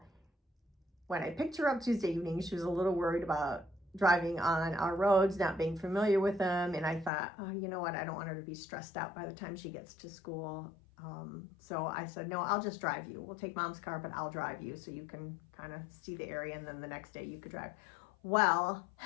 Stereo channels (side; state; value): right; drops out; at 7.1 s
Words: when I picked her up Tuesday evening, she was a little worried about driving on our roads, not being familiar with them. And I thought, oh, you know what? I don't want her to be stressed out by the time she gets to school. So I said, no, I'll just drive you. We'll take mom's car, but I'll drive you so you can kind of see the area. And then the next day you could drive. Well,